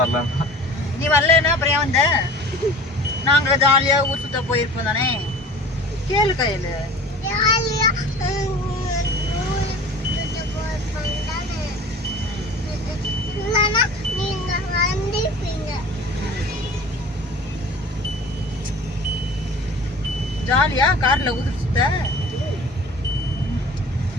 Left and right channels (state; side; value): normal; both; correlation 0.41